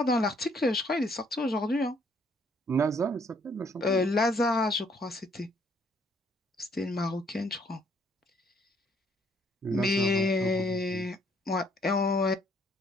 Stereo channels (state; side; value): normal; both; correlation 0.65